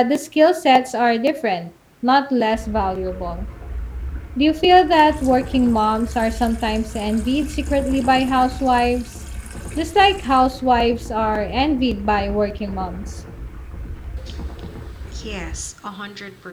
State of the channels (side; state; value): both; identical; correlation 1.00